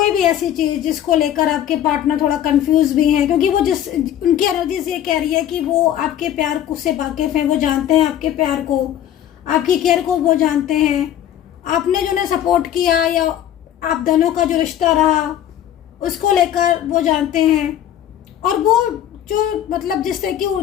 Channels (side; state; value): right; quieter; 11.0 dB